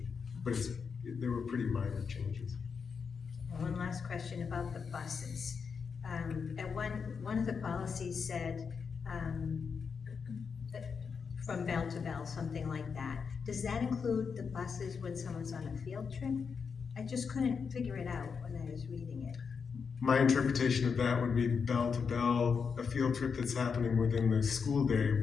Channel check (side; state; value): right; quieter; 5.9 dB